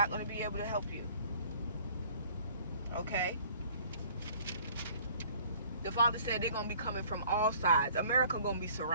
going to be able to help you. Okay? The Father said they're going to be coming from all sides. America going to be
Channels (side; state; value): both; inverted; correlation -0.53